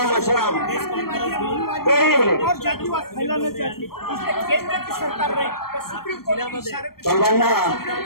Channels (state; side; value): late; right; 0.94 ms